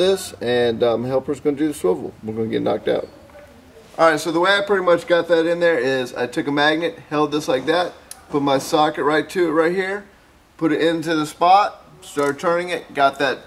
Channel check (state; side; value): identical; both; correlation 1.00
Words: and helper's going to do the swivel. We're going to get knocked out. Alright, so the way I pretty much got that in there is I took a magnet, held this like that, put my socket right to it right here, put it into the spot, started turning it, got